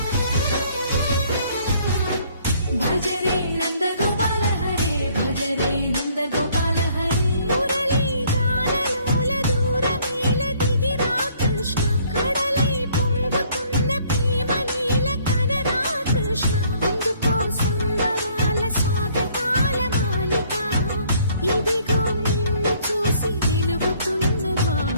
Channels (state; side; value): inverted; both; correlation -0.62